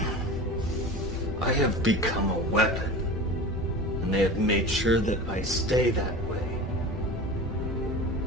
I have become a weapon, and they have made sure that I stay that way.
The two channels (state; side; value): normal; both; correlation 0.33